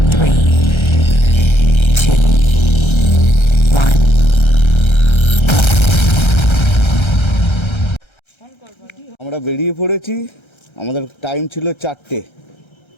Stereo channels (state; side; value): late; right; 1.3 ms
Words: 3, 2, 1. আমরা বেরিয়ে পড়েছি। আমাদের time ছিল 4টে,